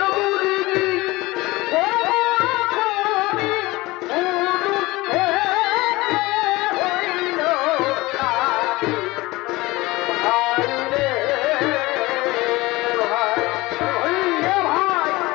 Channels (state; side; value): quieter; right; 20.7 dB